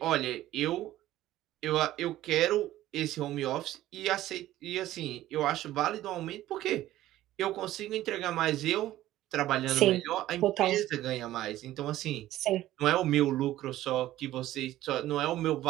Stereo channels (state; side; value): quieter; left; 14.5 dB